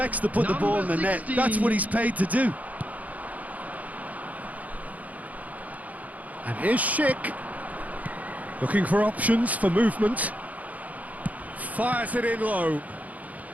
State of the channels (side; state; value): left; late; 0.074 ms